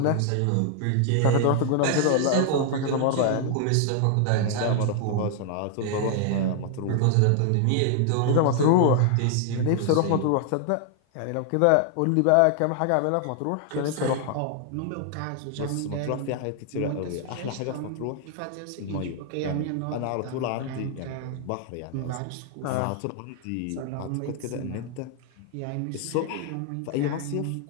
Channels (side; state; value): both; different; correlation 0.00